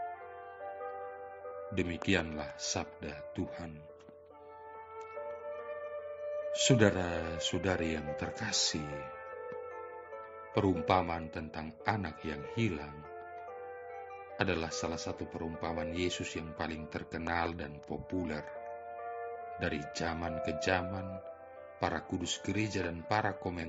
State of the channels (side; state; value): both; identical; correlation 1.00